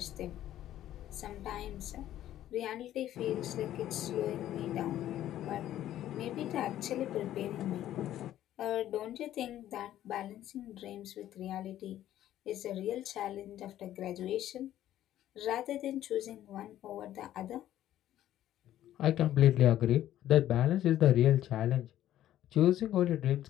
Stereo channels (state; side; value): quieter; right; 12.6 dB